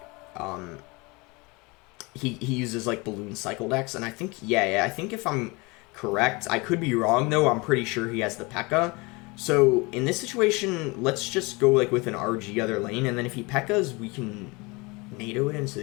he uses, like, balloon cycle decks, and I think, yeah, I think if I'm correct, I could be wrong, though, I'm pretty sure he has the P.E.K.K.A. So, in this situation, let's just go, like, with an RG other lane, and then if he P.E.K.K.As, we can NATO it into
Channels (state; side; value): quieter; right; 26.3 dB